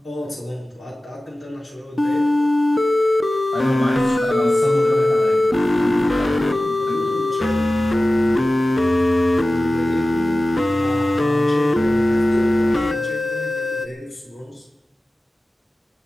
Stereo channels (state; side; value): normal; both; correlation 0.96